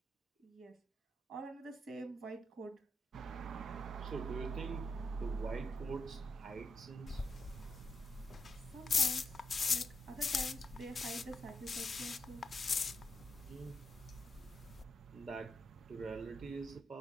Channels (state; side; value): normal; both; correlation 0.83